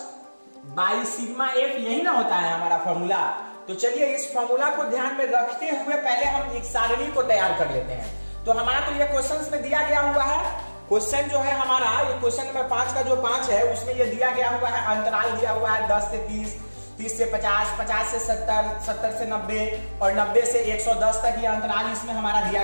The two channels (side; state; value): both; inverted; correlation -1.00